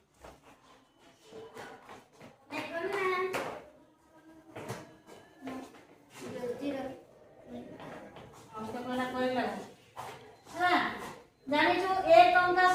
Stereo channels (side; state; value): both; identical; correlation 1.00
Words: জানিছো 1 টঙ্কা